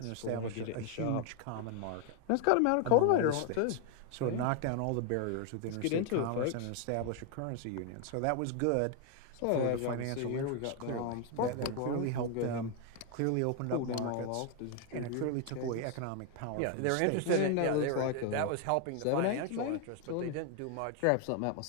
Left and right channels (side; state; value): both; different; correlation 0.01